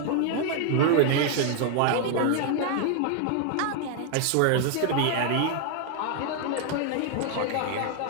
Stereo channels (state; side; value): different; both; correlation 0.00